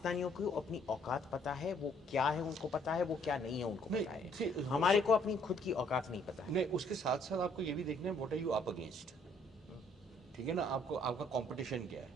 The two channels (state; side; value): normal; both; correlation 0.64